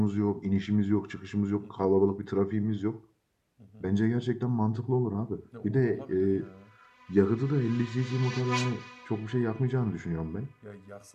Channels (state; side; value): identical; both; correlation 1.00